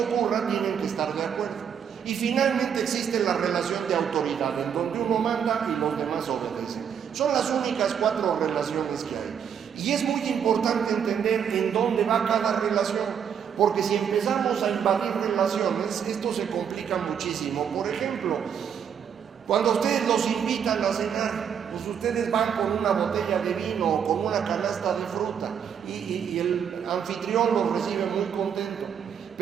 tienen que estar de acuerdo. Y finalmente existe la relación de autoridad, en donde uno manda y los demás obedecen. Son las únicas 4 relaciones que hay. Y es muy importante entender en dónde va cada relación, porque si empezamos a invadir relaciones, esto se complica muchísimo. Por ejemplo, cuando ustedes los invitan a cenar, pues ustedes van con una botella de vino o con una canasta de fruta y el anfitrión los recibe muy contento.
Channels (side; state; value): left; quieter; 7.9 dB